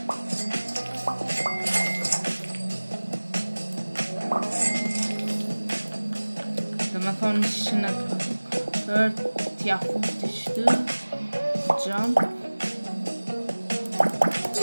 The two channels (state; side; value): inverted; both; correlation -1.00